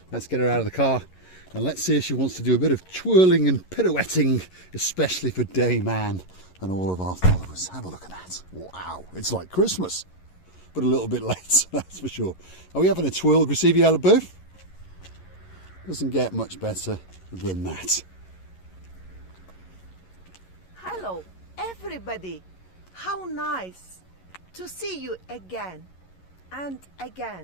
Let's get her out of the car and let's see if she wants to do a bit of twirling and pirouetting, especially for Dame Anne and all of our followers. Have a look at that. Wow, it's like Christmas, but a little bit late, that's for sure. Are we having a twirl, Richie Booth? Doesn't get much better than that. Hello, everybody. How nice to see you again and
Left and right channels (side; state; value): right; late; 11 ms